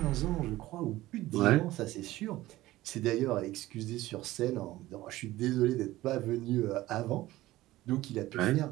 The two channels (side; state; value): left; quieter; 16.8 dB